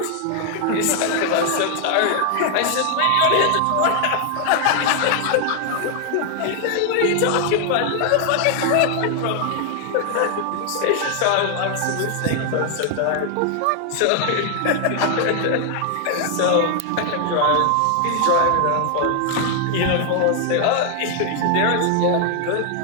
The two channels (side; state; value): both; different; correlation 0.00